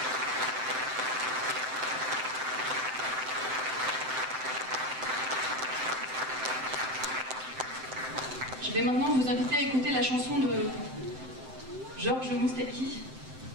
Je vais maintenant vous inviter à écouter la chanson de Georges Moustaki,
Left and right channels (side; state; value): left; late; 7.7 ms